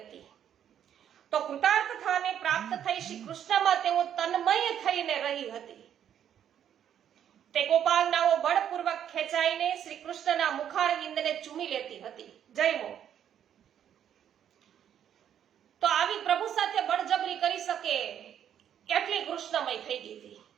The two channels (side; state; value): left; quieter; 9.6 dB